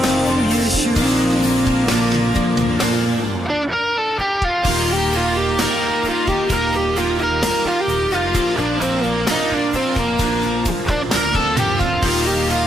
ံးယေရှု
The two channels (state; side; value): normal; both; correlation 0.81